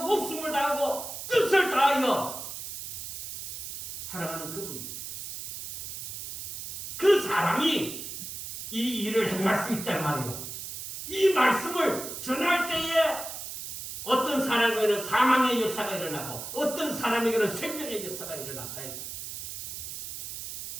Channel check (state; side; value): noise; right; hiss, 8 dB below the sound